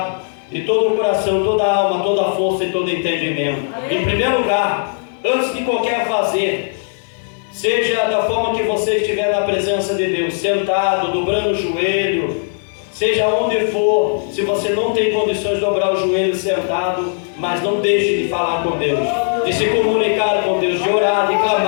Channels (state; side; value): silent; right; digital silence